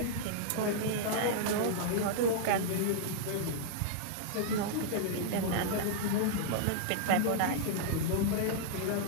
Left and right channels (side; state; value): both; different; correlation -0.01